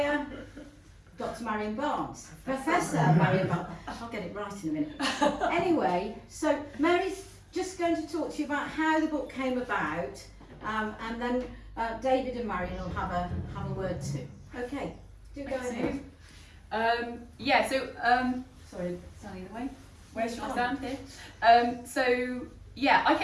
Dr. Marian Barnes, Professor Marian Barnes. I'll get it right in a minute. Anyway, so Mary's just going to talk to you about how the book came about, and then David and Marian will have a word too. Okay, do go ahead. Sorry, standing in the way. Where should I stand here? I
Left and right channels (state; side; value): identical; both; correlation 1.00